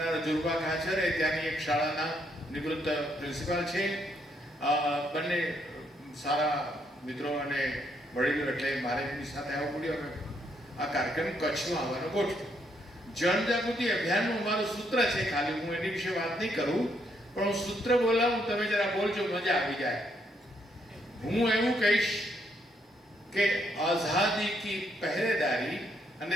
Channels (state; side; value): normal; both; correlation 0.74